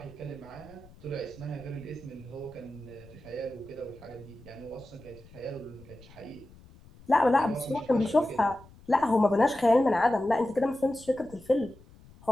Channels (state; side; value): noise; left; rumble, 23 dB below the sound